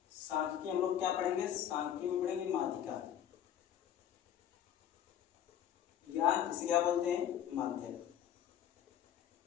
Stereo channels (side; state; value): right; quieter; 10.2 dB